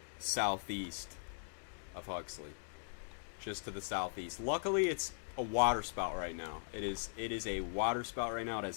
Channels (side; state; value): right; silent; digital silence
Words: southeast of Huxley. Just to the southeast. Luckily, it's a water spout right now. It is a water spout right now. It